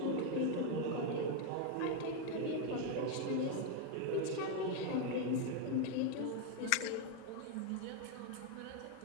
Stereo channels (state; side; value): different; both; correlation 0.01